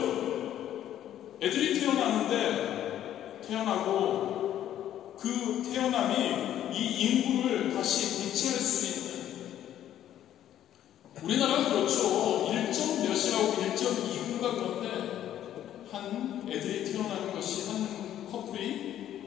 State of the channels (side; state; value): right; quieter; 11.4 dB